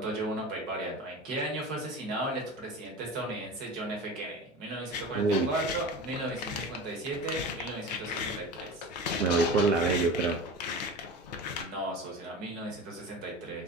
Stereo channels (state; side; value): normal; both; correlation 0.31